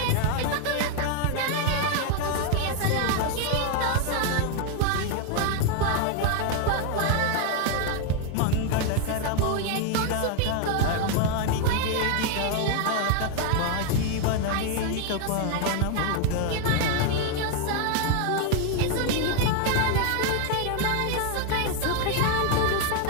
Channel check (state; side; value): different; both; correlation 0.01